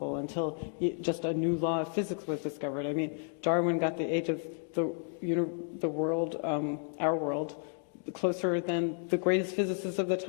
until just a new law of physics was discovered. I mean, Darwin got the age of the world, our world, closer than the greatest physicists of the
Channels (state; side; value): silent; right; 56 dB below the other